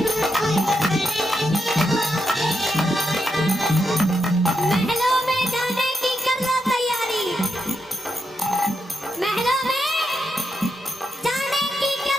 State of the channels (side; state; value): both; normal; correlation 0.84